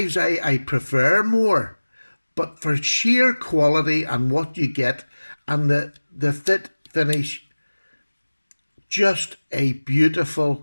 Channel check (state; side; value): inverted; both; correlation -1.00